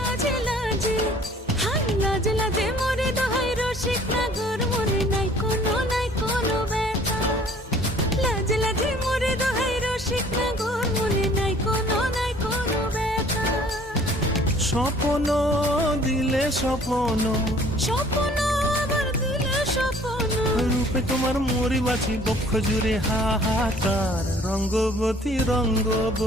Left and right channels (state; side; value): normal; both; correlation 0.55